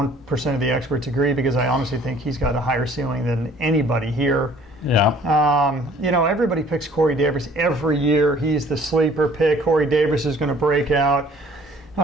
of the experts agree, because I honestly think he's got a higher ceiling than anybody here. Yeah. Everybody picks Corey Davis every year. He's the sleeper pick. Corey Davis is going to break out.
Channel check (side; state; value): both; normal; correlation 0.55